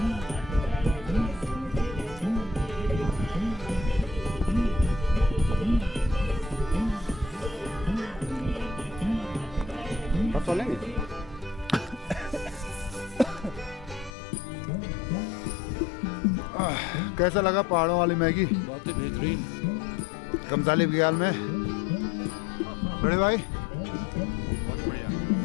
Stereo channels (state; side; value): drops out; right; at 14.1 s